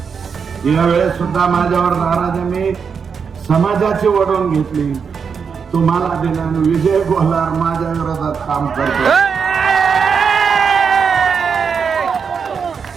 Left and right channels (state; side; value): quieter; left; 6.2 dB